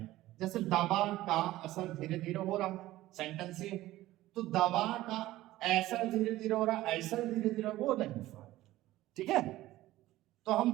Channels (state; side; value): quieter; left; 16.2 dB